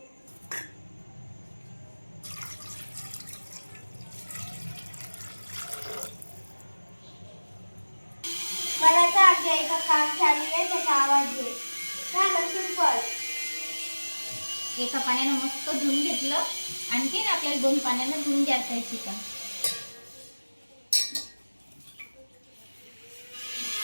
मराठा आज्ञा काम चालू आहे, त्याचा आवाज घे। सिंपल एका पाण्याने मस्त धुवून घेतलं। आणखी आपल्याला 2 पाण्याने धुवून घ्यायचं आहे चिकन।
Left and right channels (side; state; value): both; inverted; correlation -1.00